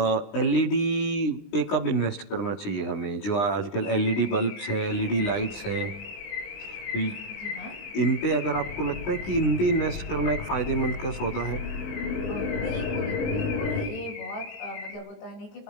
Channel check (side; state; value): right; late; 20 ms